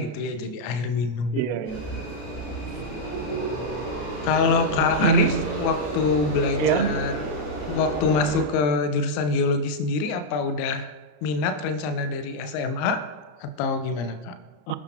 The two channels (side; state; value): right; late; 33 ms